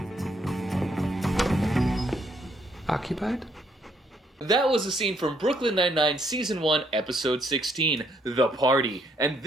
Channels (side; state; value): both; normal; correlation 0.70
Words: Occupied? That was a scene from Brooklyn Nine-Nine Season 1, Episode 16, The Party. And